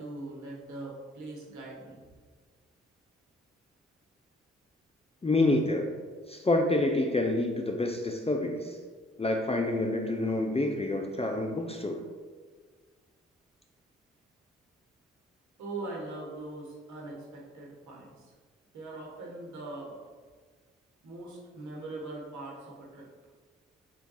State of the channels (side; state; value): both; normal; correlation 0.61